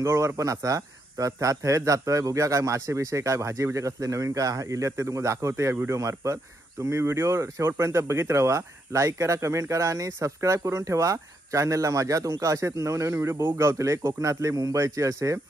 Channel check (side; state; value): both; normal; correlation 0.78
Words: पण असा, तर त्या थेट जातोय। बघूया काय मासे विषय काय भाजी बिजे कसले नवीन काय इल्यात ते तुम्हाला दाखवते या व्हिडिओ मार्फत। तुम्ही व्हिडिओ शेवटपर्यंत बघित राहा, लाईक करा, कमेंट करा आणि सबस्क्राईब करून ठेवा चॅनलला माझ्या। तुमका असेच नवनवीन व्हिडिओ बघू गावतले, कोकणातले, मुंबईचे असे